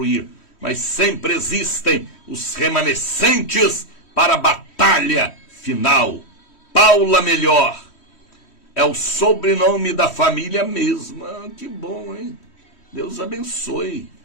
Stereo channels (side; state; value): right; late; 3.1 ms